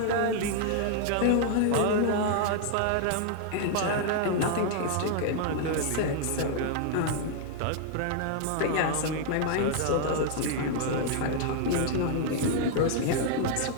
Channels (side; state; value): both; different; correlation 0.00